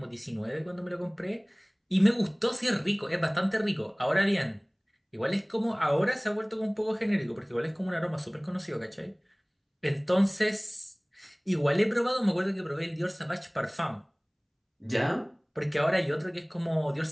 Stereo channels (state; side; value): identical; both; correlation 1.00